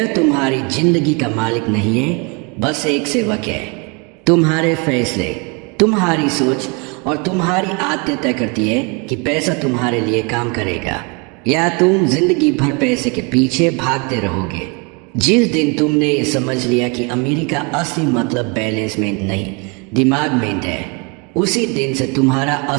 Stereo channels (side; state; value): left; quieter; 32.0 dB